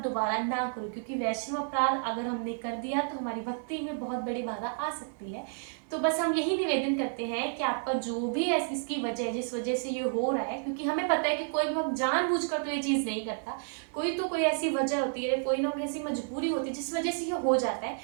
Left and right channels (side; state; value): left; silent; digital silence